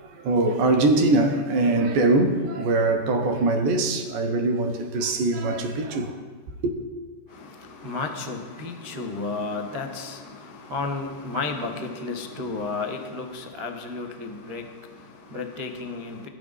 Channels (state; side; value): late; left; 14 ms